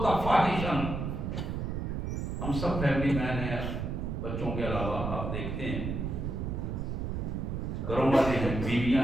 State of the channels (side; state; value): right; noise; rumble, 3 dB below the sound